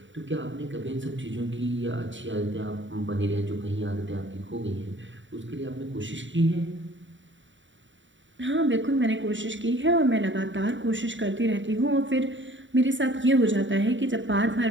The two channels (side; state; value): left; late; 0.55 ms